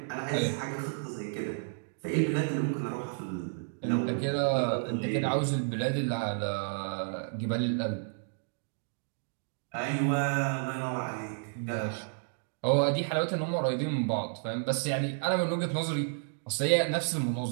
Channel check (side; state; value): left; silent; digital silence